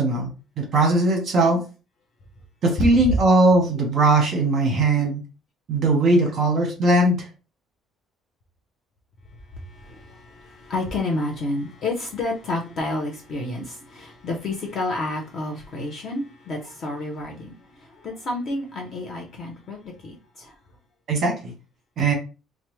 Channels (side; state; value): both; normal; correlation 0.46